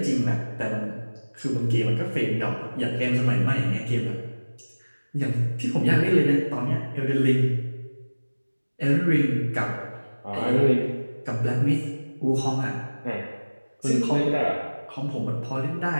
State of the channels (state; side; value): inverted; both; correlation -1.00